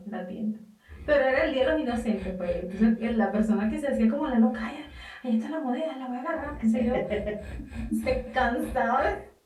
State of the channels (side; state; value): both; identical; correlation 1.00